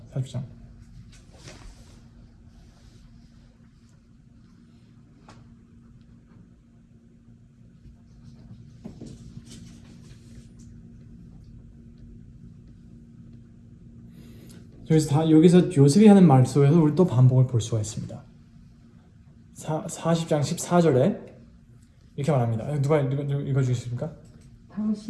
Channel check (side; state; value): both; identical; correlation 1.00